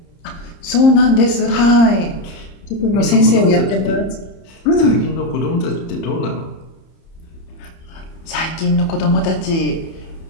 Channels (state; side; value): late; right; 30 ms